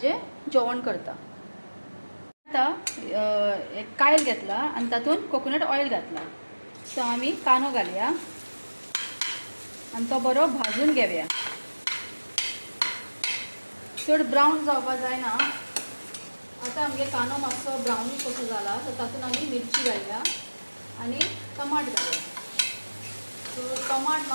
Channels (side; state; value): both; inverted; correlation -1.00